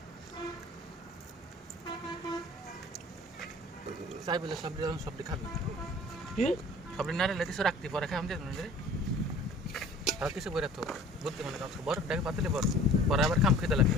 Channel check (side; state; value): both; normal; correlation 0.47